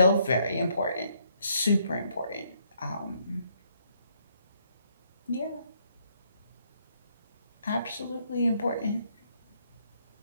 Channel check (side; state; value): both; inverted; correlation -0.71